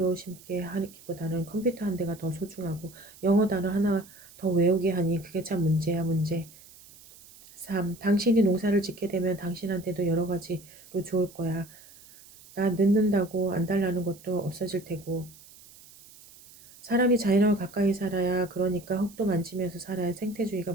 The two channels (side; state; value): right; noise; hiss, 22 dB below the sound